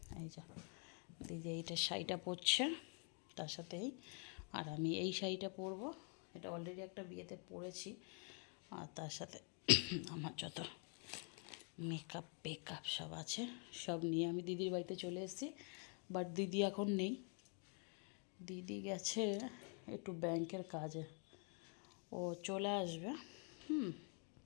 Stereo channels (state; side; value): quieter; right; 39.9 dB